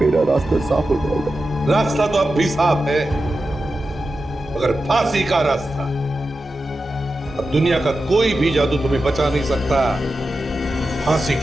मेरा रास्ता साफ हो जाएगा। रास्ता तो अब भी साफ है, मगर फांसी का रास्ता। अब दुनिया का कोई भी जादू तुम्हें बचा नहीं सकता फांसी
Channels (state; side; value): normal; both; correlation 0.91